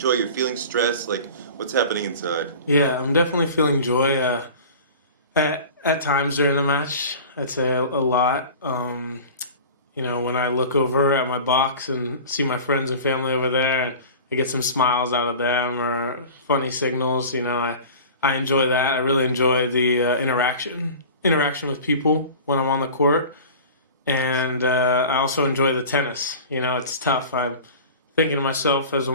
You're feeling stress? Like, what's happening inside? Yeah, I'm definitely feeling joy. At times during the match, I'd say a lot. When I look over at my box and see my friends and family over there, and I get some smiles out of them or funny signals, I enjoy that. I really enjoy the interaction with people when I'm on the court. And I also enjoy the tennis. It's tough. I'm thinking to myself as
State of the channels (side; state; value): both; inverted; correlation -0.38